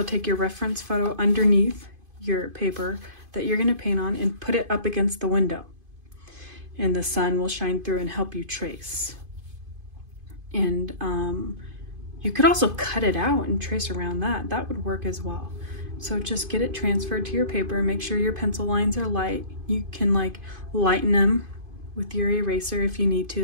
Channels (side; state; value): left; late; 2.5 ms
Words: take your reference photo underneath your paper that you're going to paint on and put it up against the window, and the sun will shine through and help you trace. And you could also cut it out and trace around that. That would work as well. So just get it transferred to your paper. Make sure your pencil lines are light. You can like lighten them with your eraser if you need to.